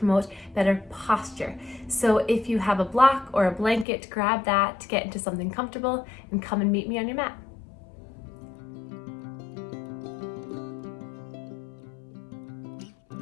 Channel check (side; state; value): right; drops out; at 3.9 s